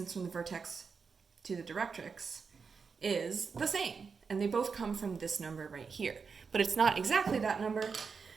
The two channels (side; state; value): left; quieter; 5.4 dB